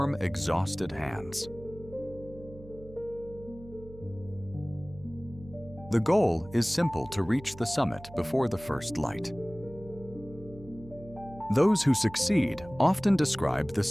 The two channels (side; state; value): right; noise; hum, 18 dB below the sound